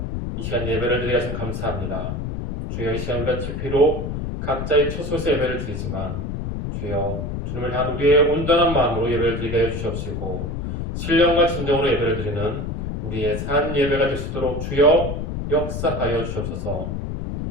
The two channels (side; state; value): left; noise; rumble, 4 dB below the sound